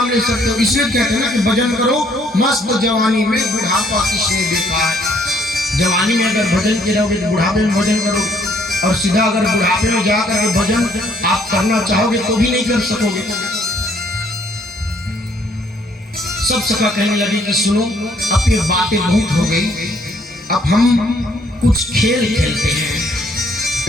ले सकते हो। इसलिए कहते हैं ना कि भजन करो मस्त जवानी में, बुढ़ापा किसने देखा है। जवानी में अगर भजन किए रहोगे तो बुढ़ापे में भजन करो, और सीधा अगर बुढ़ापे में जाकर भजन आप करना चाहोगे तो भी नहीं कर सकोगे। सब सखा कहने लगे कि सुनो, अब ये बातें बहुत हो गई, अब हम कुछ खेल खेलते हैं।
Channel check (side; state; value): both; normal; correlation 0.65